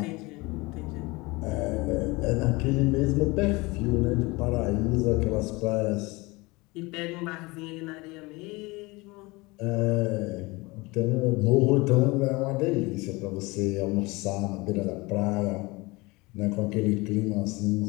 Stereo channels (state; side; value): quieter; right; 23.7 dB